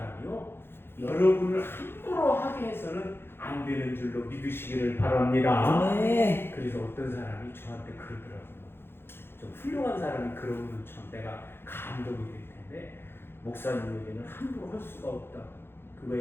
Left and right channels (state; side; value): late; right; 0.11 ms